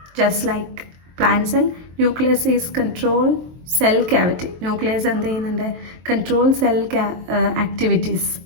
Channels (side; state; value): left; late; 23 ms